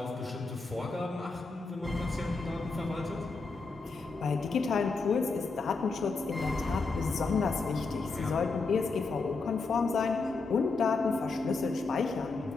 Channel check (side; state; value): right; quieter; 4.0 dB